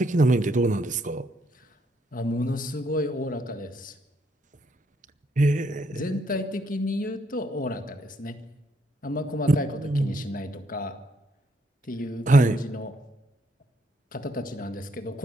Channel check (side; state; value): both; normal; correlation 0.72